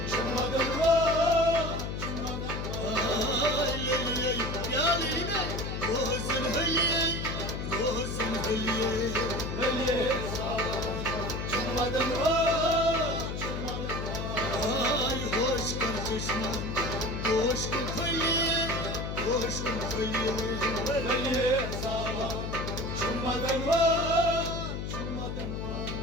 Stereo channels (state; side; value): noise; left; hum, 4 dB below the sound